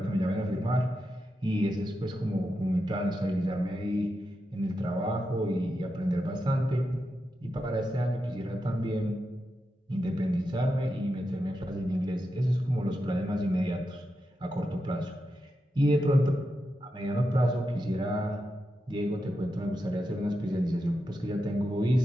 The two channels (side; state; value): both; normal; correlation 0.87